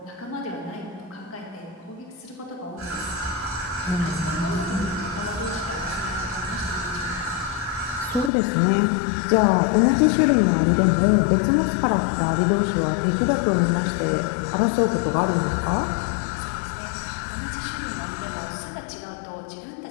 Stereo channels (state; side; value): drops out; right; at 8.3 s